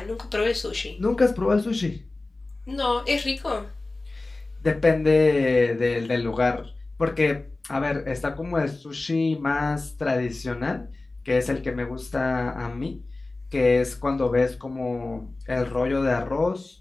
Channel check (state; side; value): quieter; right; 3.2 dB